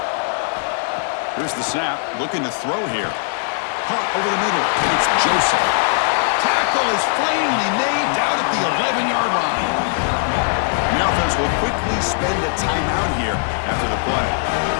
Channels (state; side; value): silent; right; digital silence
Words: Here's the snap. Looking to throw here. Caught over the middle. It's Joseph. Tackle is finally made down at the 11-yard line. The offense will quickly spend a timeout here after the play.